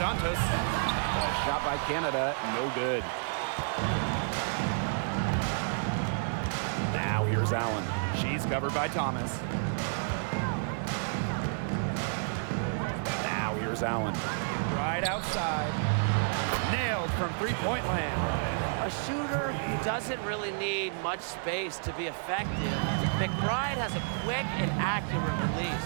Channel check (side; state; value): left; silent; digital silence